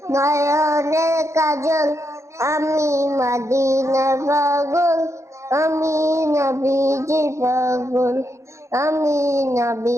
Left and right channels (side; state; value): left; late; 0.14 ms